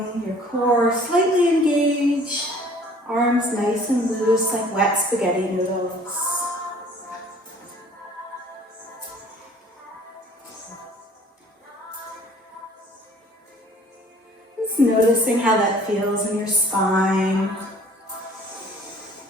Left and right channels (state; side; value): normal; both; correlation 0.53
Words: your core slightly engaged. Arms nice and loose like wet spaghetti noodles. Just noticing how that feels in your spine.